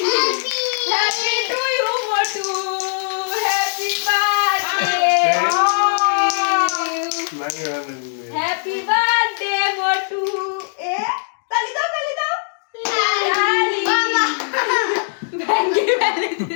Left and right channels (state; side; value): silent; right; digital silence